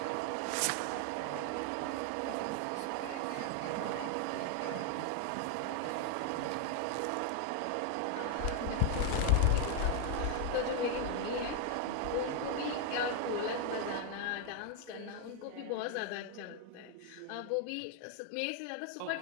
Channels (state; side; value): different; both; correlation 0.00